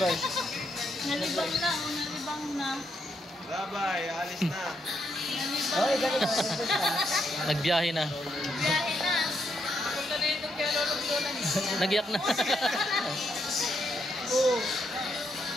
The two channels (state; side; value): normal; both; correlation 0.78